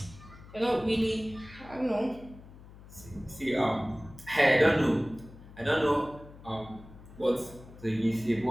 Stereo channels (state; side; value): noise; left; hum, 19 dB below the sound